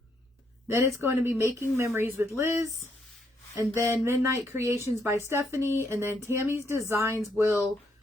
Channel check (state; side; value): normal; both; correlation 0.74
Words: Then it's going to be Making Memories with Liz. And then Midnight Creations by Stephanie. And then Tammy's Designs will